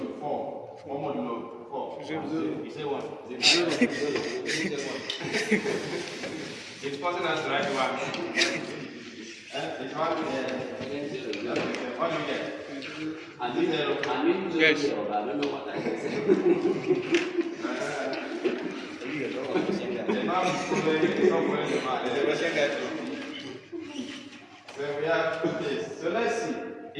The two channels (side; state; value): both; identical; correlation 1.00